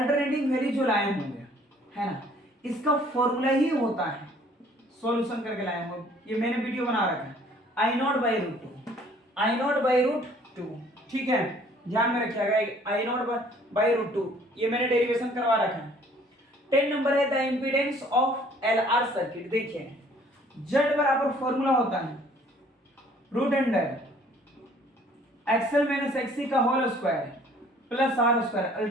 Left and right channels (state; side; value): normal; both; correlation 0.57